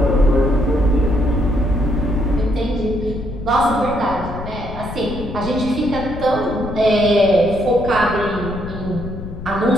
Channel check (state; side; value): noise; left; rumble, 10 dB below the sound